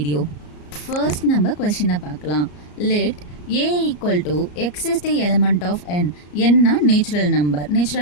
First நம்ம கொஸ்டினை பார்க்கலாம். Let a equal to x is the element of n. n na natural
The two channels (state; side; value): late; right; 34 ms